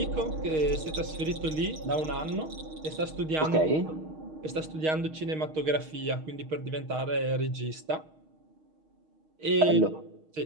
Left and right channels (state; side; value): late; left; 6.4 ms